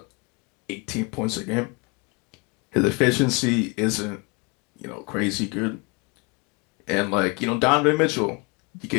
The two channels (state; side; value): quieter; right; 28.7 dB